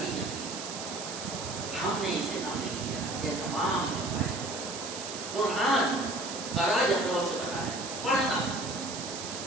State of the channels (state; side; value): noise; right; hiss, 7 dB below the sound